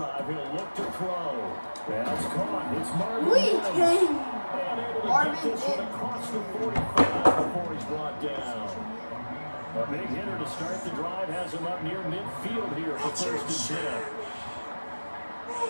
He'll look to throw. That's caught. It's Marvin We Mims. came. And able to Marvin get this one Mims. across the 45 before he's brought down. A big hitter to start the drive has him up near midfield here for Richard first and 10. Sherman.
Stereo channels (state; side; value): inverted; both; correlation -1.00